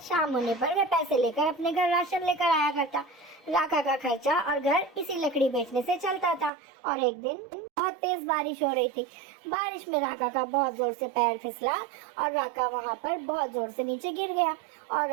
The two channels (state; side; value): drops out; left; at 6.5 s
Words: शाम होने पर वह पैसे लेकर अपने घर राशन लेकर आया करता। राका का खर्चा और घर इसी लकड़ी बेचने से चलता था। और एक दिन बहुत तेज बारिश हो रही थी। बारिश में राका का बहुत जोर से पैर फिसला और राका वहाँ पर बहुत जोर से नीचे गिर गया और